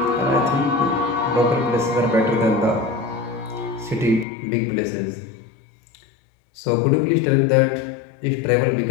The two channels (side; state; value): right; drops out; at 4.2 s